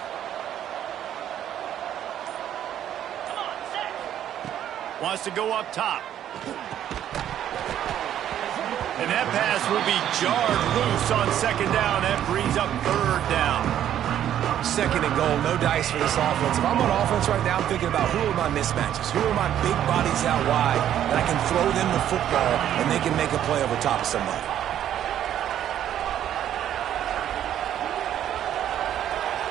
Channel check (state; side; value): quieter; left; 10.8 dB